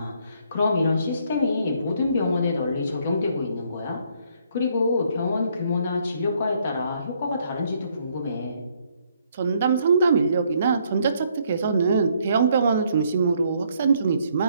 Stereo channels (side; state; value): both; inverted; correlation -0.68